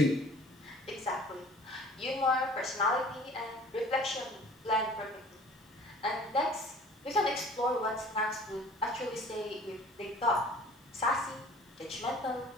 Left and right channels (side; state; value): both; normal; correlation 0.48